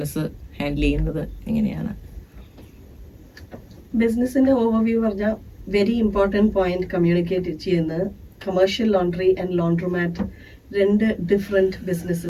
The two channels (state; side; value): identical; both; correlation 1.00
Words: ഹാൻഡിൽ ചെയ്യുന്നത് എങ്ങനെയാണ്? ബിസിനസിന്റെ ഓവർവ്യൂ പറഞ്ഞാൽ വെരി ഇമ്പോർട്ടൻറ്റ് പോയിന്റ് കമ്മ്യൂണിക്കേറ്റ് ചെയ്യുന്നത് commercial laundry and laundromat 2 different